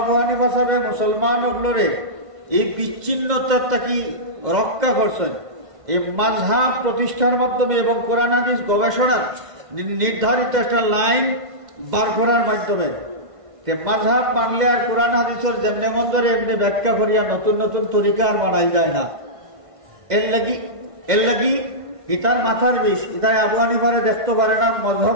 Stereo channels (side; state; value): left; late; 1.5 ms